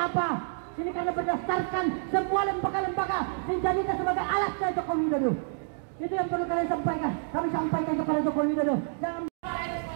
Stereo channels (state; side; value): silent; left; digital silence